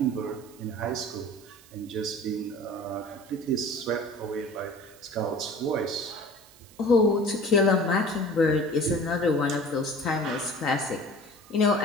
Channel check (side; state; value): right; noise; hiss, 24 dB below the sound